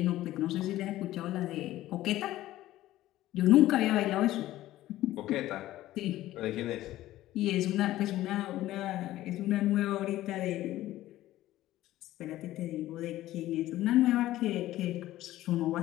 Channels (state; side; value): quieter; right; 15.1 dB